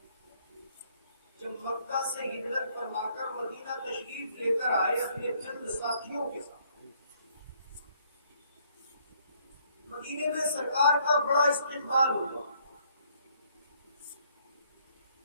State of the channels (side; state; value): both; inverted; correlation -0.66